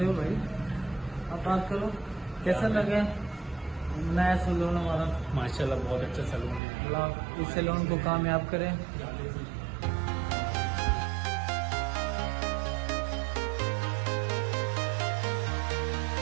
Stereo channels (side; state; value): left; drops out; at 6.6 s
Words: हो भाई। आप बात करो, कैसा लगा नया सैलून हमारा? माशाल्लाह बहुत अच्छा सैलून है। अल्लाह इस सैलून को कामयाब करें।